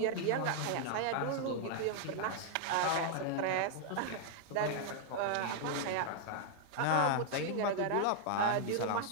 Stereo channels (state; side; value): different; both; correlation 0.00